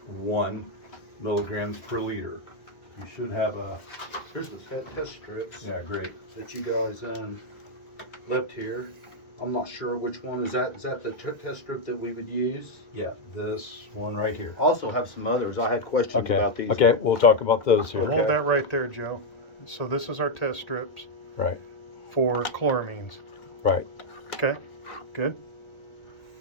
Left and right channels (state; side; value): late; right; 1.9 ms